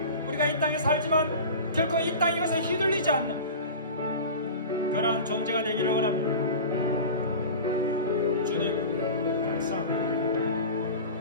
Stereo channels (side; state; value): both; inverted; correlation -0.33